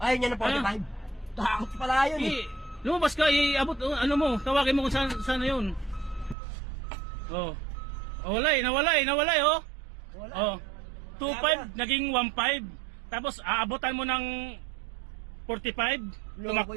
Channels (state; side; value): drops out; left; at 6.4 s